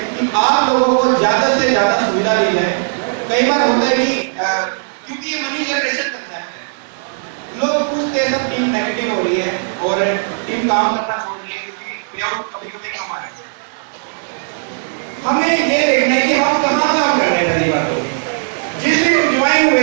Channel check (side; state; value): left; silent; 57 dB below the other